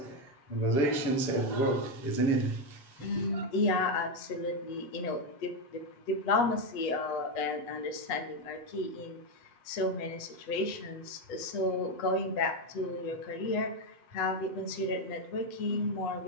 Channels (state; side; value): late; right; 8.1 ms